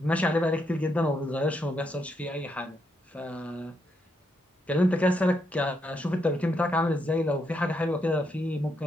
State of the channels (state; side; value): normal; both; correlation 0.79